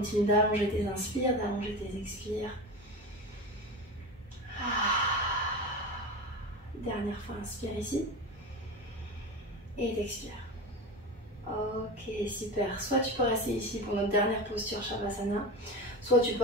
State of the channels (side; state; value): both; normal; correlation 0.25